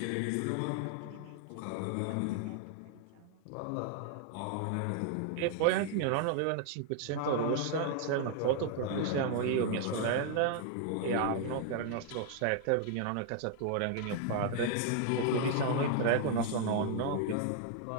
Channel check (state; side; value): different; both; correlation 0.00